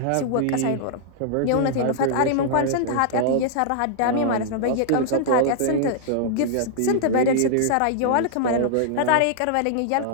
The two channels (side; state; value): both; different; correlation -0.01